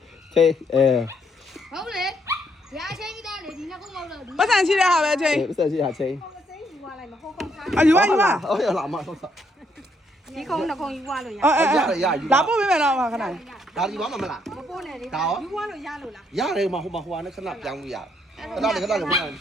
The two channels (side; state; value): both; normal; correlation 0.72